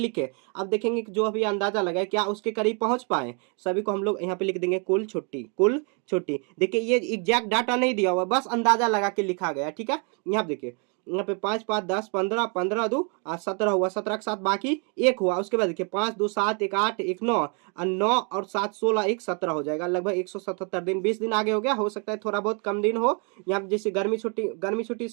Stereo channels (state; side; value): quieter; left; 36.9 dB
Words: अब देखेंगे कि जो अभी अंदाजा लगाए क्या उसके करीब पहुंच पाए, सभी को हम लोग यहाँ पे लिख देंगे कुल छुट्टी, कुल छुट्टी। देखिए ये एग्जैक्ट डाटा नहीं दिया हुआ, बस अंदाजा लगा के लिखा गया। ठीक है, यहाँ देखिए यहाँ पे 5 5 10 15 15 2 17 हुआ, 17 के साथ बाकी एक हुआ। उसके बाद देखिए 5 2 7 1 8 1 9 और 9 और 7 16 1 17 हो जाएगा, लगभग 177 दिन, 20 दिन आगे हो गया, हो सकता है थोड़ा बहुत कम दिन हो। यहाँ पे जैसे गर्मी छुट्टी